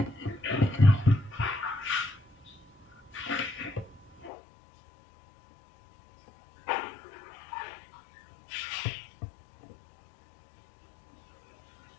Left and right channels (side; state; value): right; drops out; at 4.3 s